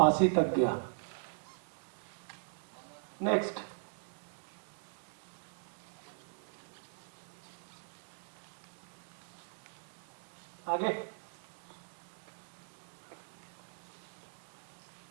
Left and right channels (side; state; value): left; silent; digital silence